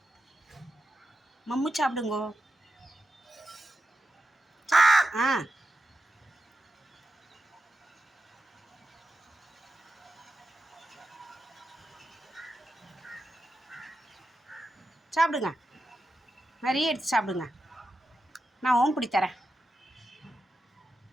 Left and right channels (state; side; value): normal; both; correlation 0.90